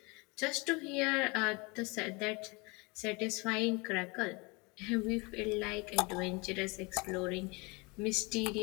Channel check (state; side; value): quieter; right; 27.8 dB